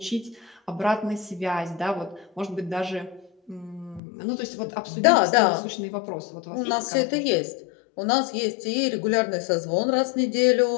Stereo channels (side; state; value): right; drops out; at 4.0 s